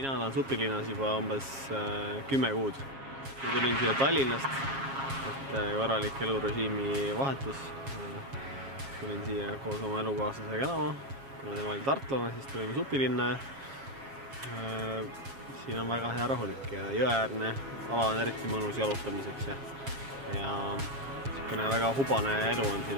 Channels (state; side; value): late; left; 7.4 ms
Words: Mina olen Supilinnas juba umbes 10 kuud. Tulin siia Tallinnast, et korralik elurežiimi vahetus. Tulin siia koos oma elukaaslasega elama. Kuna tema oli tartlane, siis tulime Supilinna. Siin on väga hea rahulik ja jõeäärne ala on eriti mõnus jalutamiseks. Ja väga hubane elu on